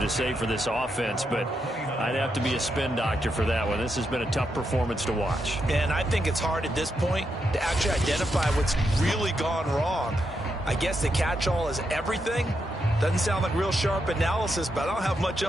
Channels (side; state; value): both; normal; correlation 0.83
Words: to say for this offense, but I'd have to be a spin doctor for that one. This has been a tough performance to watch. And I think it's hard at this point to actually identify what's really gone wrong. I guess the catch-all is everything. Doesn't sound like real sharp analysis, but I don't have much